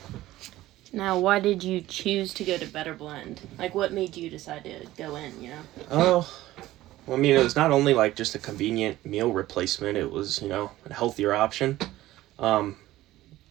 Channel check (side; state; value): left; quieter; 15.8 dB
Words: Now, why did you choose to go to Better Blend? Like, what made you decide to go in? Oh, well, I mean, it was not only like just a convenient meal replacement. It was a healthier option. Um,